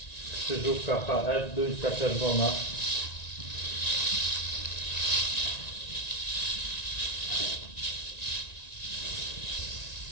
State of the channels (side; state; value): right; late; 1.9 ms